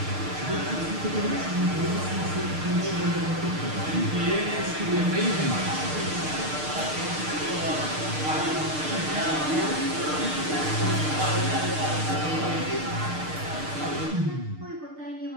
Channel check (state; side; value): late; left; 6.6 ms